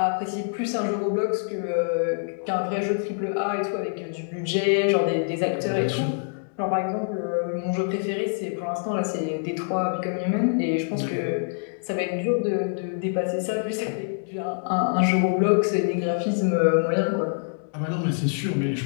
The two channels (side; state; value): right; silent; digital silence